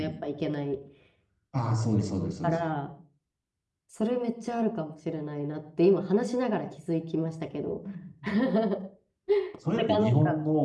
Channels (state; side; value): identical; both; correlation 1.00